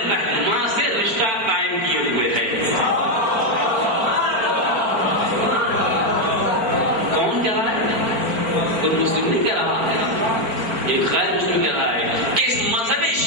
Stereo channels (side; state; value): left; late; 4.4 ms